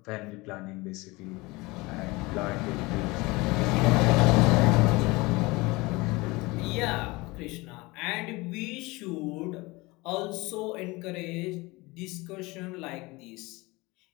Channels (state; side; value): quieter; right; 23.2 dB